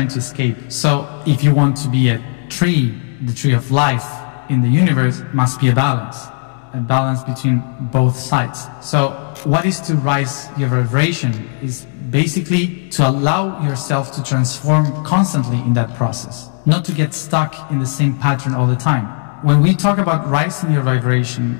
to escape. So if you want to be a tree, the tree of life in the universe, must be a balance between both sides. So what is to rise your vibration is basically to allow yourself to transform constantly in that process, not to get stuck in the same pattern all the time. When we talk about rising your vibration,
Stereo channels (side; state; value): right; silent; 58 dB below the other